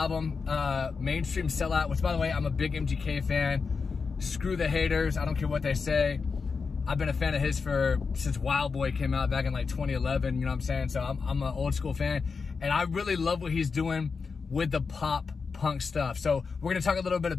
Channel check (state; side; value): quieter; right; 5.0 dB